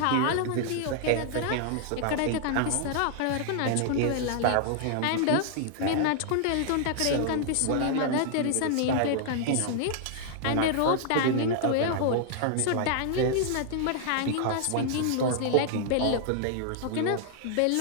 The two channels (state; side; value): different; both; correlation 0.00